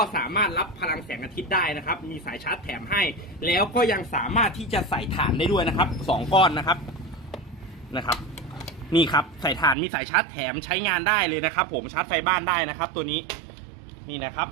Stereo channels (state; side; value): drops out; left; at 9.8 s